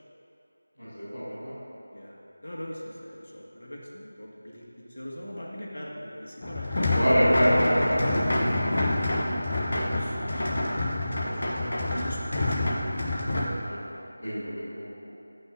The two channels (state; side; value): inverted; both; correlation -0.95